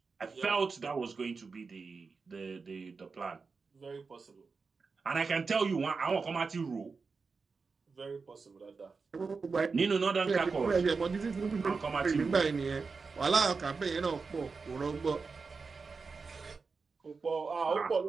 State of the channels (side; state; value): left; quieter; 4.7 dB